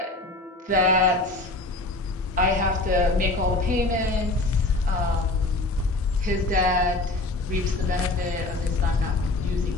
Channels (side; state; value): right; quieter; 3.0 dB